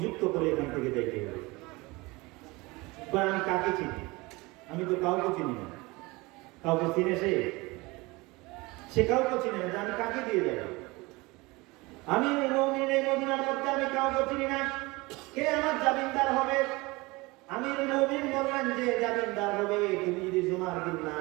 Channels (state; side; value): quieter; left; 23.4 dB